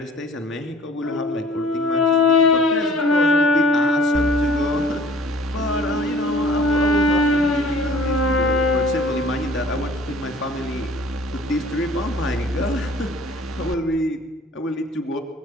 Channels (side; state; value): both; normal; correlation 0.51